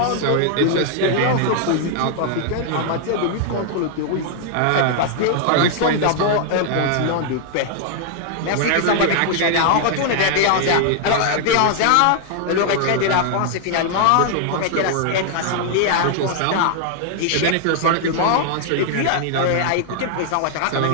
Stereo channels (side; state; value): both; different; correlation 0.00